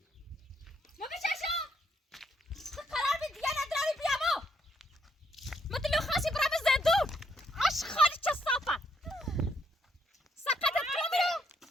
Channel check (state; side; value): normal; both; correlation 0.75